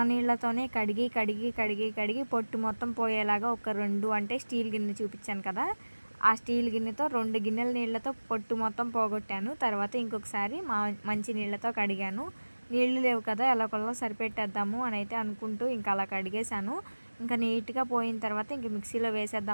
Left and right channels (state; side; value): inverted; both; correlation -1.00